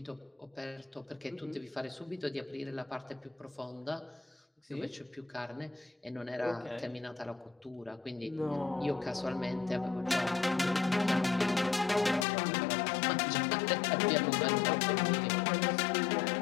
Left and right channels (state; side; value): drops out; right; at 12.2 s